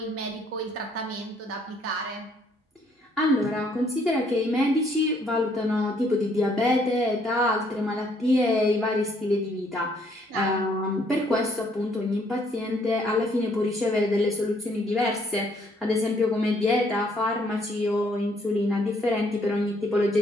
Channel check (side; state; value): both; normal; correlation 0.66